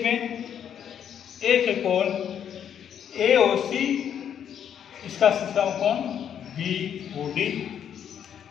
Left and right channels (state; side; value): quieter; right; 8.9 dB